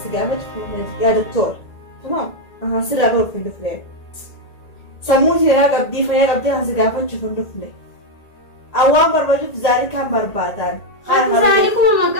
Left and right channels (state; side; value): late; right; 1.8 ms